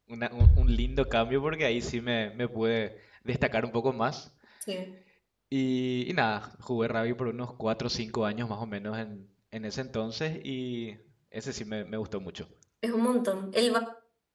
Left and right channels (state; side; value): identical; both; correlation 1.00